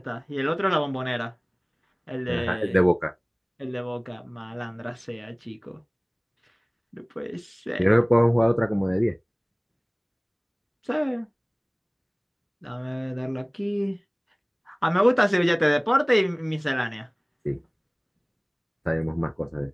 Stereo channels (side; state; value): both; identical; correlation 1.00